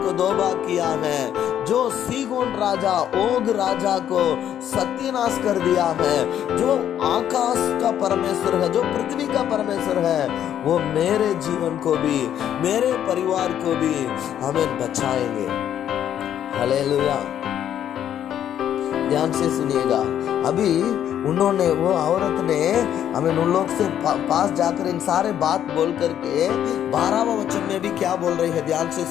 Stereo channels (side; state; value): right; quieter; 10.3 dB